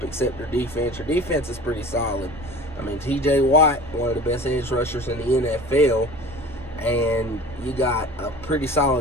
except your defense. Your defense is pretty solid. T.J. Watt, one of the best edge rushers in the NFL, and you got a pretty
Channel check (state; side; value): noise; right; rumble, 18 dB below the sound